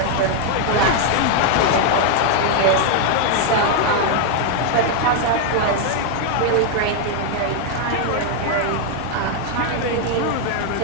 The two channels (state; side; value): different; both; correlation 0.00